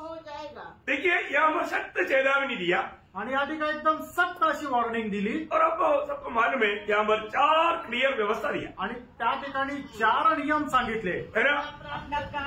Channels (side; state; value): both; identical; correlation 1.00